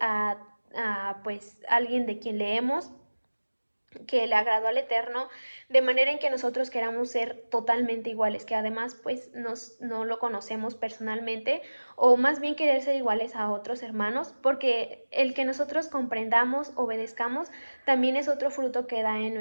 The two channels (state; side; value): inverted; both; correlation -1.00